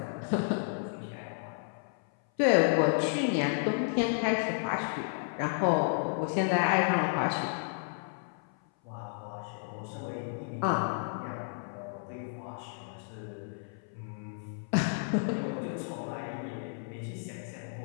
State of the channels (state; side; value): silent; right; 56 dB below the other